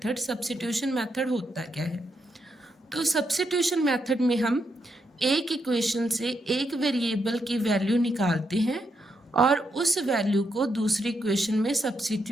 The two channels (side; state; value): both; normal; correlation 0.81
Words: Substitution method होता क्या है? तो सब्स्टिट्यूशन मेथड में हम एक इक्वेशन से एक वेरिएबल की वैल्यू निकालते हैं और उस वैल्यू को दूसरी इक्वेशन में